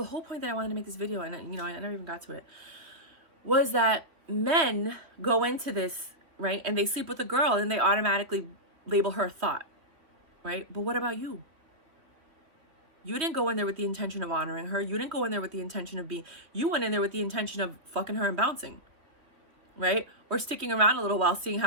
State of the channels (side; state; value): left; late; 3.0 ms